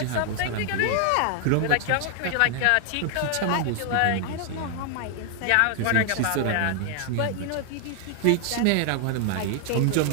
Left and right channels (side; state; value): both; different; correlation 0.00